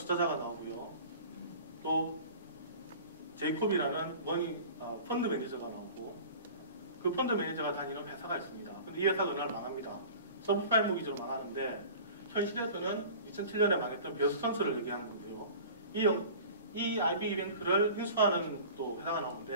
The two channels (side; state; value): both; inverted; correlation -0.41